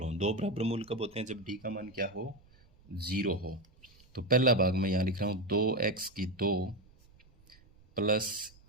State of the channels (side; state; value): right; noise; rumble, 28 dB below the sound